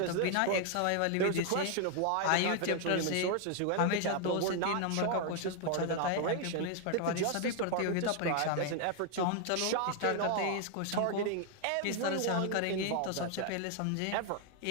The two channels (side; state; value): both; different; correlation 0.00